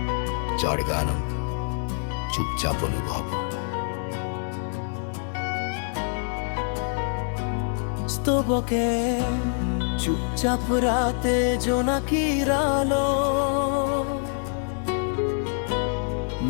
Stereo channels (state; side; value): silent; right; digital silence